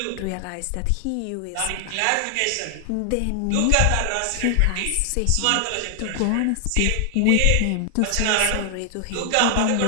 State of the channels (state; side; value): different; both; correlation 0.00